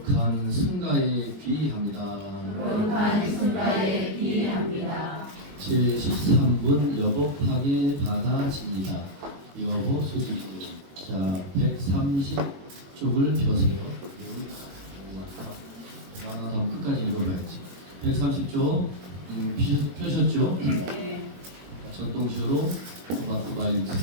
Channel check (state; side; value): late; left; 21 ms